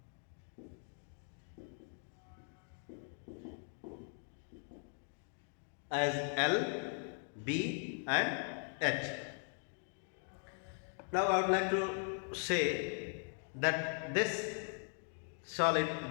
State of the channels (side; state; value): right; silent; 51 dB below the other